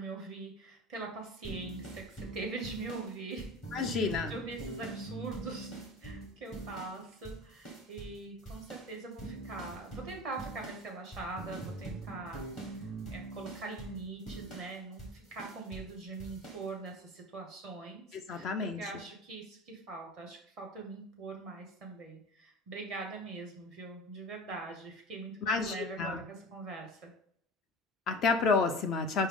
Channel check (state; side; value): normal; both; correlation 0.34